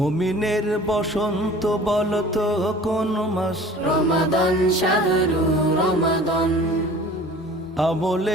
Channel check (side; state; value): both; normal; correlation 0.45